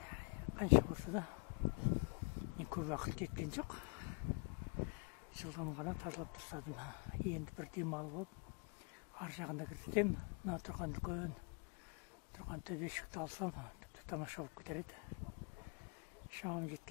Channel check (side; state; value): right; quieter; 35.0 dB